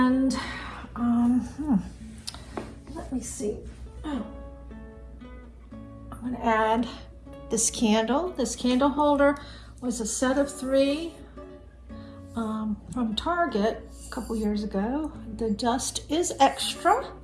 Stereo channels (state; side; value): identical; both; correlation 1.00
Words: let me see. Oh, I'm gonna add this candle. This candle holder was a set of 3 from Target a couple years ago. The dust is extra.